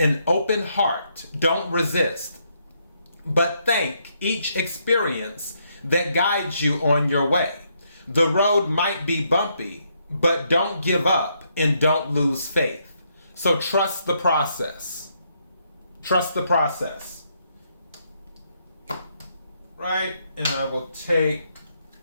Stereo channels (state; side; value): inverted; both; correlation -0.75